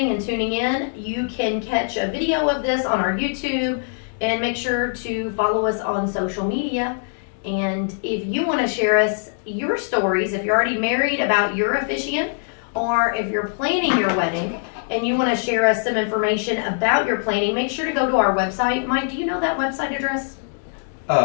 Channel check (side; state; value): right; silent; digital silence